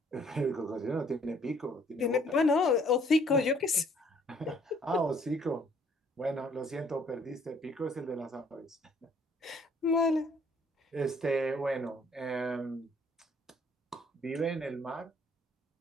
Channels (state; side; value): normal; both; correlation 0.61